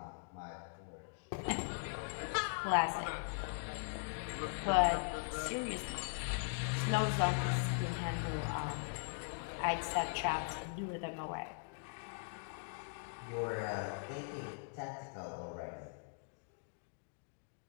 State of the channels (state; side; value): silent; right; digital silence